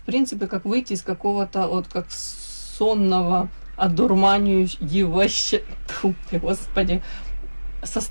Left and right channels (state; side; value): inverted; both; correlation -1.00